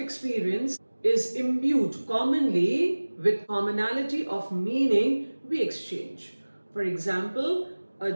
is imbued commonly with commonality of meaning we exchange. For example, a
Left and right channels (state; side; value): inverted; both; correlation -1.00